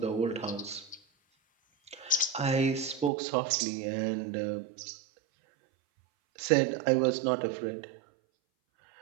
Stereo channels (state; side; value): drops out; left; at 3.1 s